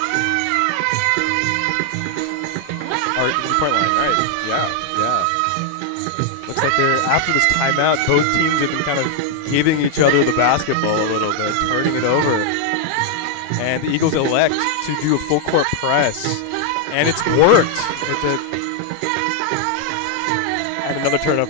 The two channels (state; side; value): different; both; correlation 0.00